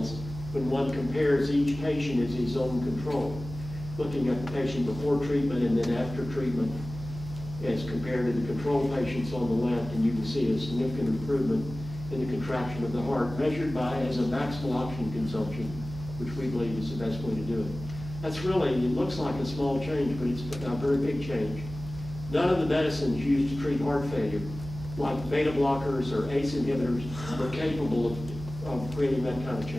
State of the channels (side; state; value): right; noise; hum, 11 dB below the sound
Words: when one compares each patient as his own control, looking at the patient before treatment and then after treatment as compared to the control patients on the left, and you can see a significant improvement in the contraction of the heart, measured by as a maximal oxygen consumption, which we believe is the best way to do it. That's really, it looks like a small change, but it's a very big change. None of the medicines used to treat heart failure, like beta blockers or ACE inhibitors, are capable of creating that kind of